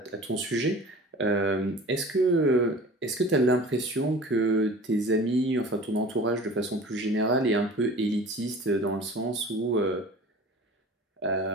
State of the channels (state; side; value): normal; both; correlation 0.41